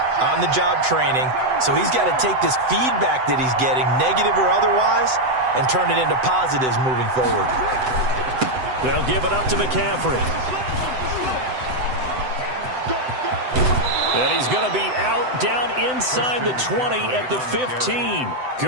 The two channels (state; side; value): late; left; 7.9 ms